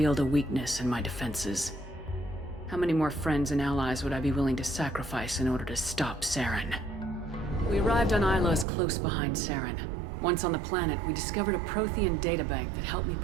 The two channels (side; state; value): left; drops out; at 8.7 s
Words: a weakness in my defenses. How many more friends and allies would I be willing to sacrifice in order to stop Saren? We arrived on Ilos close behind Saren. Once on the planet, we discovered a Prothean databank that helped me